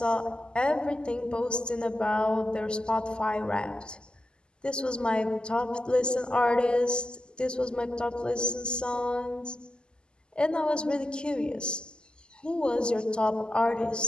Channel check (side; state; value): right; late; 0.048 ms